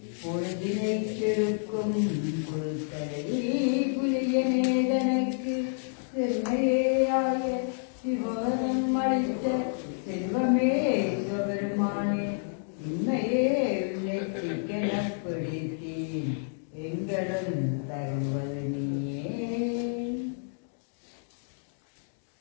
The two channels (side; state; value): right; silent; digital silence